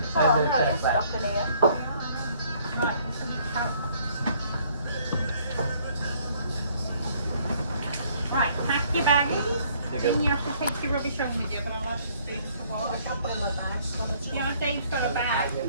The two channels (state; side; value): inverted; both; correlation -0.62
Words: Oh, no, it's stuck in here. Right, so we count. Right, pack your baggies. Then you have to take your rubbish home with you, but I'll have to speak for what I don't bring my bag. Yeah, Dave's got a bag.